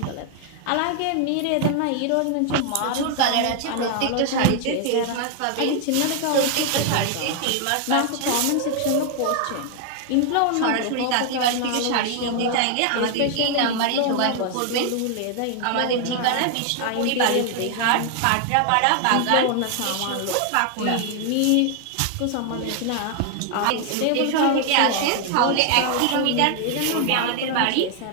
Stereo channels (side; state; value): both; different; correlation 0.00